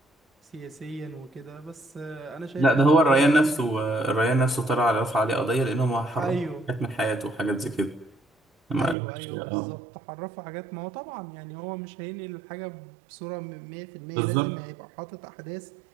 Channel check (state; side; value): drops out; left; at 9.0 s